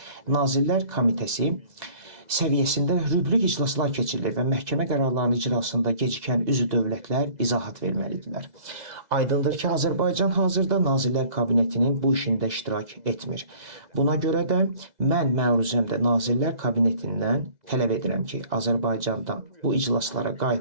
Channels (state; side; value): late; left; 2.0 ms